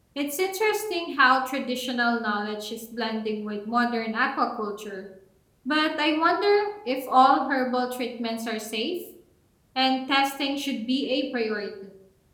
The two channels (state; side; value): identical; both; correlation 1.00